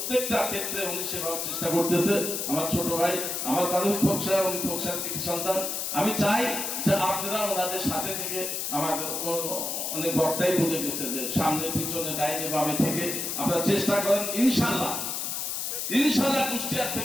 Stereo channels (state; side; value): noise; left; hiss, 2 dB below the sound